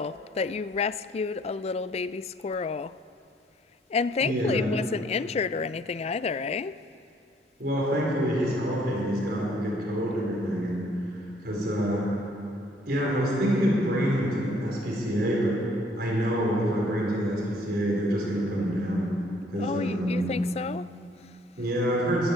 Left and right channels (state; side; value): normal; both; correlation 0.63